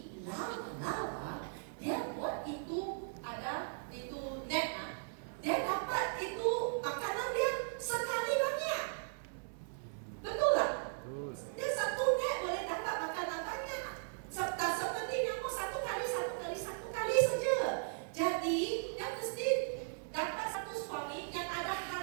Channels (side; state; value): left; silent; digital silence